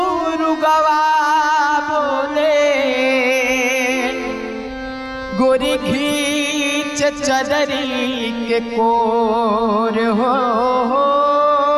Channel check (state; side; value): identical; both; correlation 1.00